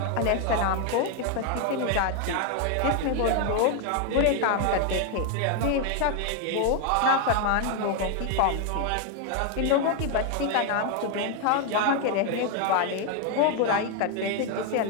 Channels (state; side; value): different; both; correlation 0.01